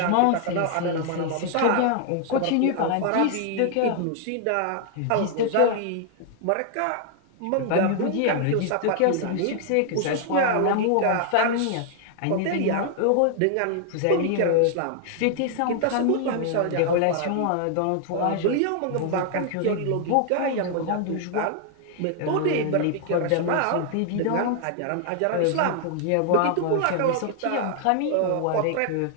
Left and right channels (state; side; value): different; both; correlation 0.00